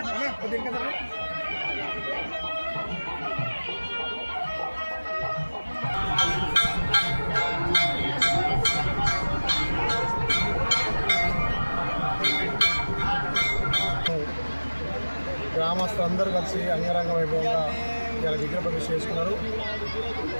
గ్రామస్తులందరూ కలిసి అంగరంగ వైభవంగా ఇలా విగ్రహ ప్రతిష్ఠ చేసుకున్నారు.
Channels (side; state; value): both; inverted; correlation -1.00